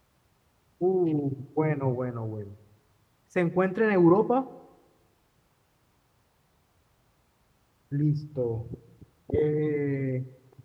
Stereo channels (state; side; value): identical; both; correlation 1.00